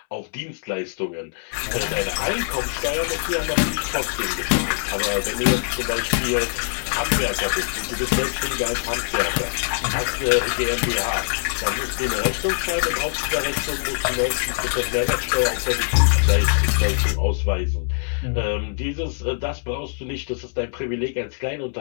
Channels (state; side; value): silent; right; digital silence